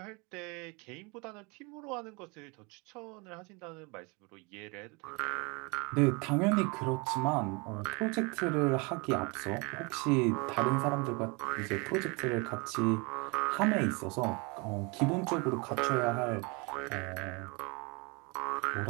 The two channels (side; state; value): left; quieter; 29.6 dB